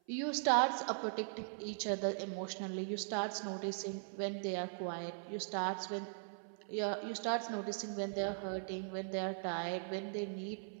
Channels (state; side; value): silent; left; 51 dB below the other